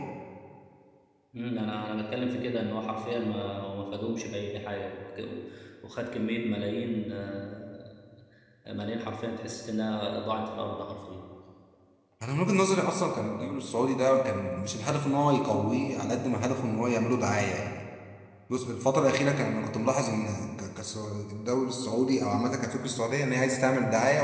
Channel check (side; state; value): both; identical; correlation 1.00